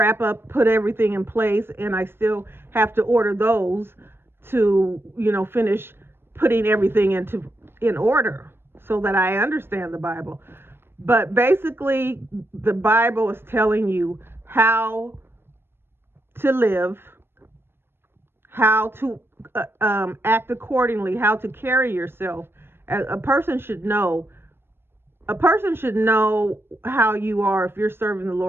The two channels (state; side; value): late; left; 0.11 ms